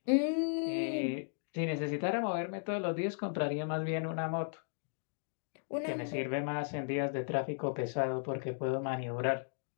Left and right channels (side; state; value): right; silent; digital silence